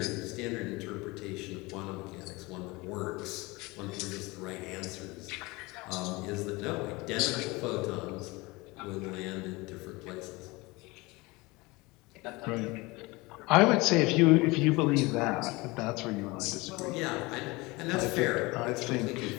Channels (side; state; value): right; quieter; 23.4 dB